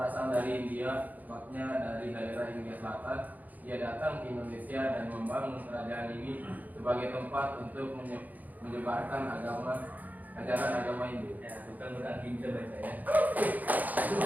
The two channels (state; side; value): late; left; 0.081 ms